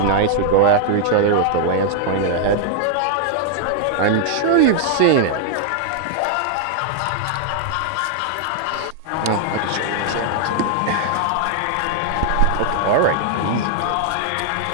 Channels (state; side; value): different; both; correlation 0.00